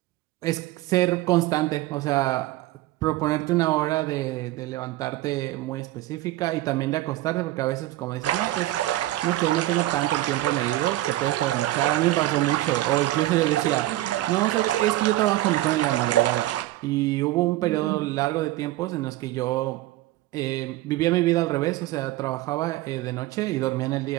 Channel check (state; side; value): quieter; left; 16.2 dB